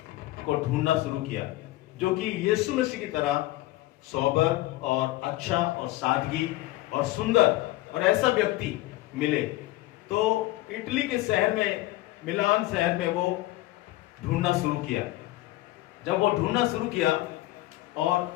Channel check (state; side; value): quieter; right; 17.5 dB